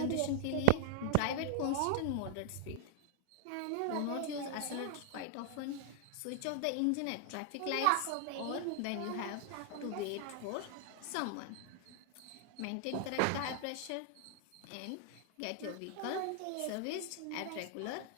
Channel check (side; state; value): both; different; correlation -0.01